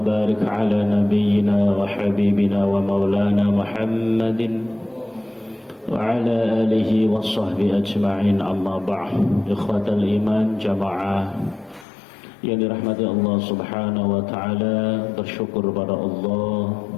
ala nabiyyina wa habibina wa maulana Muhammadin wa ala alihi wa sahbihi ajma'in, amma ba'd. Ikhwatal iman jamaah yang dirahmati Allah subhanahu wa ta'ala, bersyukur pada Allah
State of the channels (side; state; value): right; drops out; at 11.9 s